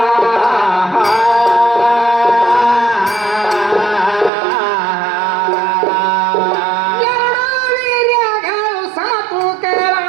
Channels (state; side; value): drops out; left; at 4.3 s